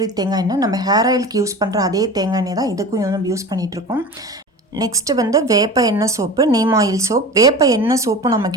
தேங்காய் எண்ணெய். நம்ம ஹேர் ஆயிலுக்கு யூஸ் பண்ணுற அதே தேங்காய் எண்ணெய் தான் இதுக்கும் யூஸ் பண்ணிகிட்ருக்கோம். நெக்ஸ்ட்டு வேப்ப எண்ணெய் சோப்பு, நீம் ஆயில் சோப். வேப்ப எண்ணெய் சோப்பும்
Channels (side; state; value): both; normal; correlation 0.33